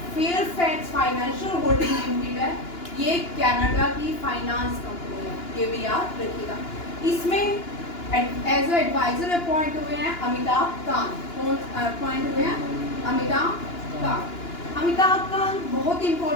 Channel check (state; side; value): late; right; 2.9 ms